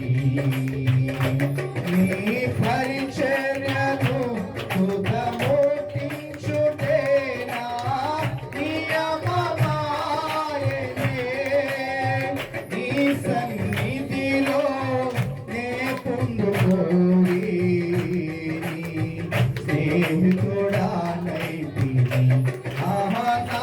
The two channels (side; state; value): both; identical; correlation 1.00